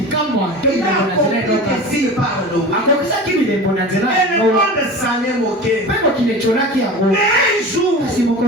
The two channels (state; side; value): normal; both; correlation 0.33